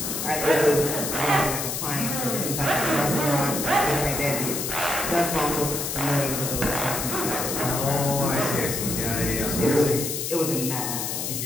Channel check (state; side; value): noise; left; hiss, 3 dB below the sound